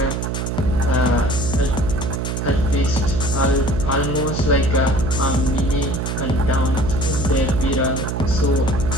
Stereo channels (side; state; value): right; noise; hum, 2 dB below the sound